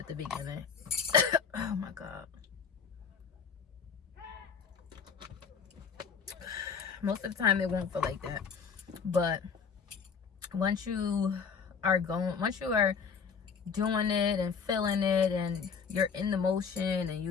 the beginning. Oh my god. Most of the time it won't feel like that. But once you are doing it and feeling it, and you're in the motion, and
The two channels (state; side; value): quieter; right; 6.0 dB